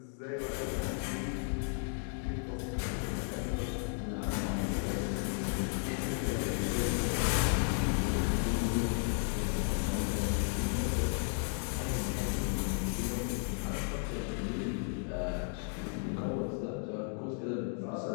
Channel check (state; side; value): silent; right; 55 dB below the other